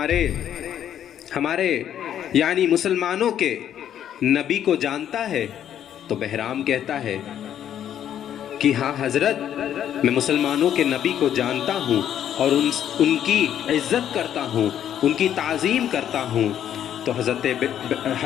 ہمارے یعنی مسلمانوں کے نبی کو جانتا ہے؟ تو بہرام کہتا ہے کہ ہاں حضرت، میں مسلمانوں کے نبی کو جانتا ہوں اور ان کی عزت کرتا ہوں، ان کی تعظیم کرتا ہوں۔ تو حضرت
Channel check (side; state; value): right; quieter; 10.2 dB